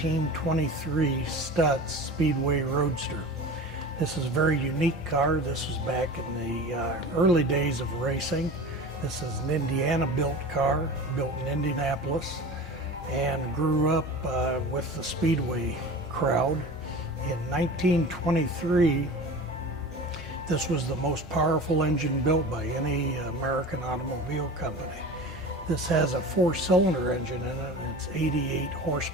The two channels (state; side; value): normal; both; correlation 0.35